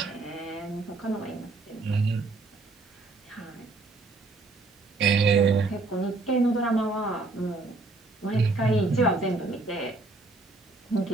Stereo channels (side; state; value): left; quieter; 3.4 dB